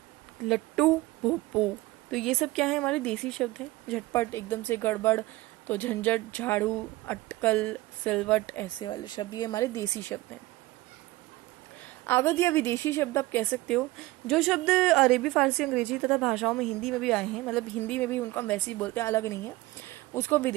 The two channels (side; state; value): left; quieter; 19.1 dB